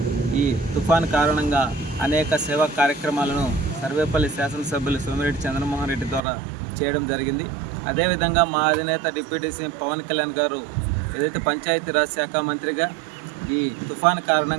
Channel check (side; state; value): left; drops out; at 6.2 s